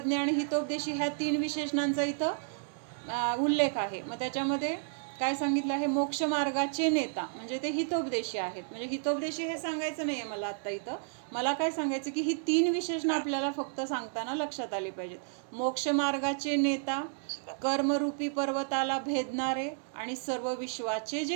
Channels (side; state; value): left; silent; 57 dB below the other